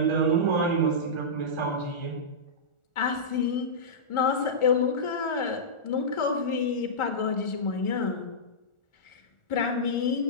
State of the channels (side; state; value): right; late; 1.4 ms